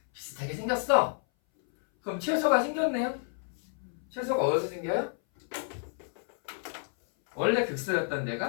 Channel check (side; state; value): right; silent; 58 dB below the other